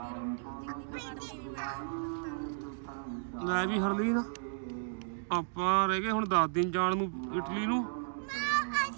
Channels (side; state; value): left; silent; digital silence